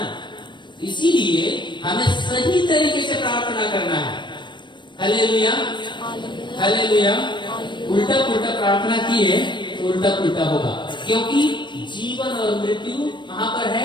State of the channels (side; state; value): right; late; 0.22 ms